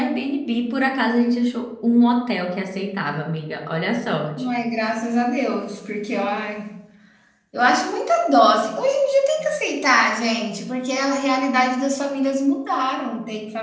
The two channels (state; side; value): identical; both; correlation 1.00